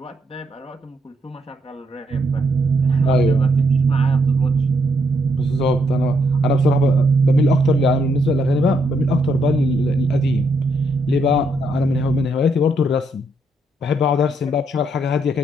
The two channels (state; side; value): normal; both; correlation 0.75